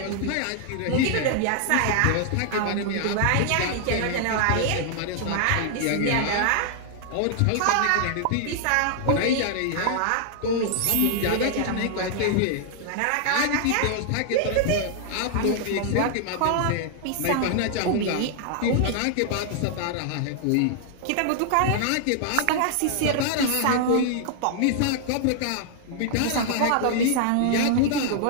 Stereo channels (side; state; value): both; different; correlation 0.00